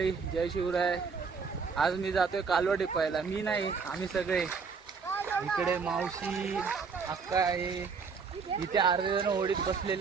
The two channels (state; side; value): quieter; left; 5.4 dB